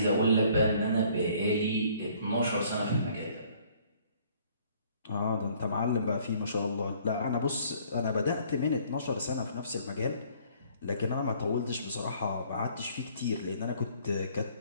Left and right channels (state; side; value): inverted; both; correlation -0.59